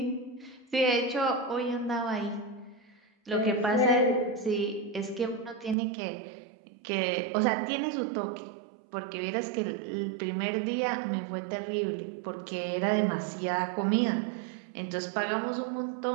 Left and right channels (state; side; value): drops out; left; at 5.8 s